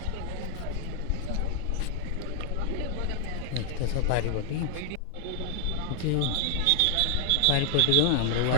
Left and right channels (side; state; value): both; different; correlation 0.00